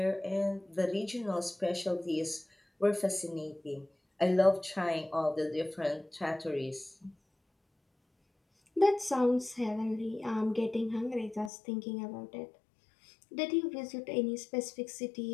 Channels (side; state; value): right; drops out; at 11.5 s